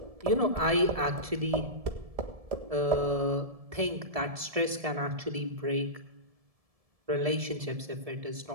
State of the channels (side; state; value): left; late; 1.7 ms